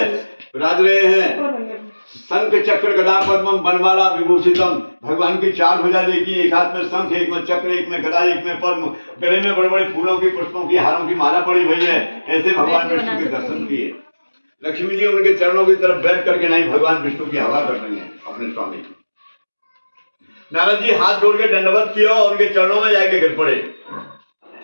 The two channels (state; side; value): inverted; both; correlation -1.00